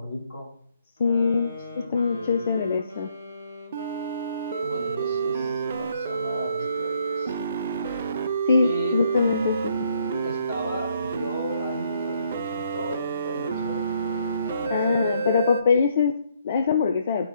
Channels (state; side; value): inverted; both; correlation -0.70